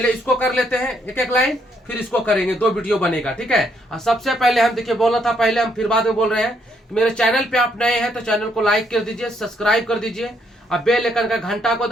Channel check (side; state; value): both; normal; correlation 0.72